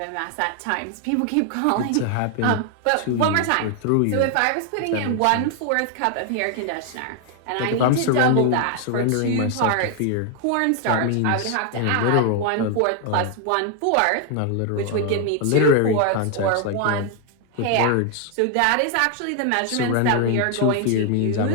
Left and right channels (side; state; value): both; different; correlation 0.00